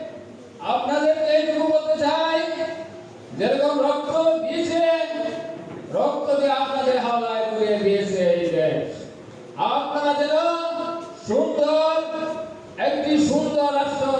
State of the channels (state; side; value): identical; both; correlation 1.00